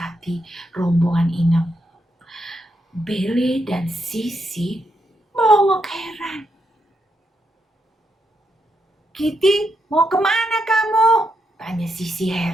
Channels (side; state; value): both; normal; correlation 0.81